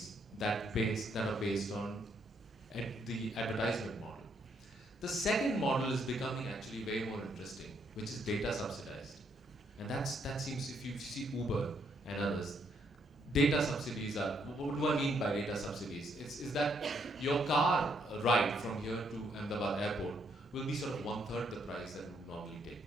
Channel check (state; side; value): normal; both; correlation 0.73